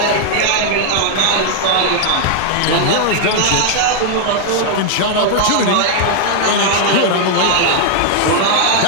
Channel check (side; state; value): both; different; correlation 0.00